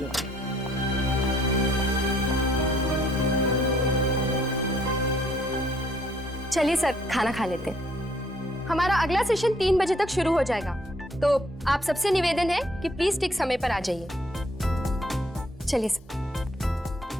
चलिए सर, खाना खा लेते हैं। हमारा अगला सेशन 3 बजे तक शुरू हो जाएगा। तो आप सबसे निवेदन है कि प्लीज ठीक समय पर आ जाइए। चलिए sir.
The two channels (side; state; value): both; normal; correlation 0.64